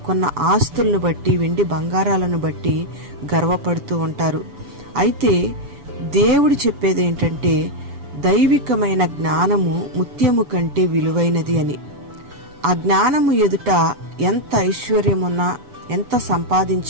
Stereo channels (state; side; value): late; left; 7.0 ms